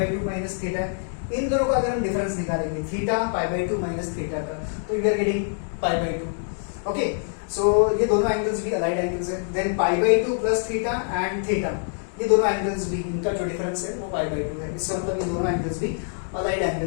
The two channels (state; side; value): silent; right; digital silence